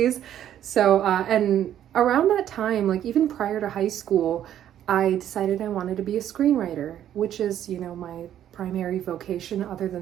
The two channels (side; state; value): left; quieter; 10.9 dB